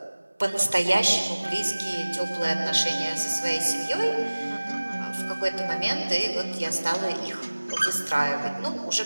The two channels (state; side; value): inverted; both; correlation -1.00